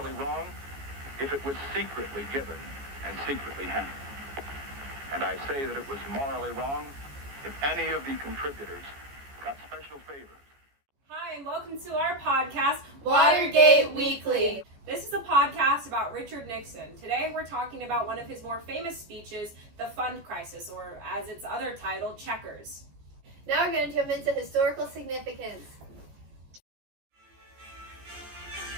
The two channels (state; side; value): late; left; 14 ms